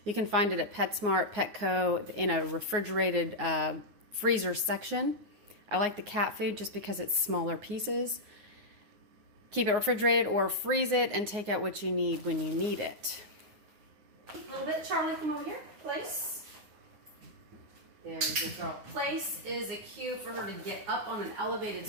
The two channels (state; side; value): late; left; 9.5 ms